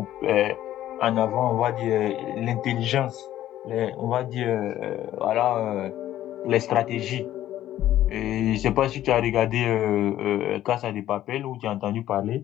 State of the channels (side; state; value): right; quieter; 13.0 dB